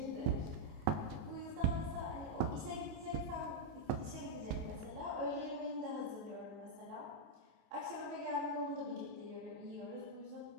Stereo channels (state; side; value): late; left; 18 ms